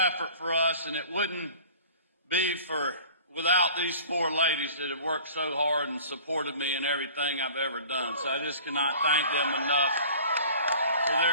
for us, and it wouldn't be without these four ladies that have worked so hard and supported me in everything I've ever done. So I just cannot thank them enough for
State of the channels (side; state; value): both; inverted; correlation -0.45